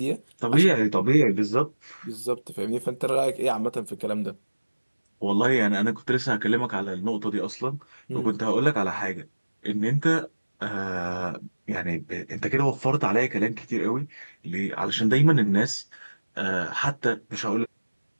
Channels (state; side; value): inverted; both; correlation -1.00